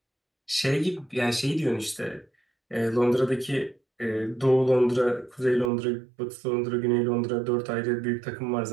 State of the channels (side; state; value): left; drops out; at 5.7 s